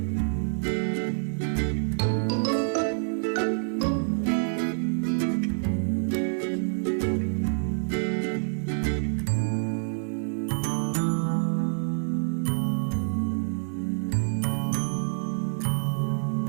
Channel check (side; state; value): left; silent; digital silence